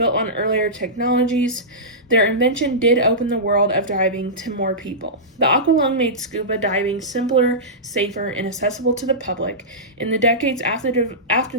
on earlier technologies, their invention did open the world of diving to more people. The aqualung made scuba diving simpler, safer, and accessible to the public. In the decades after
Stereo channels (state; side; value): normal; both; correlation -0.16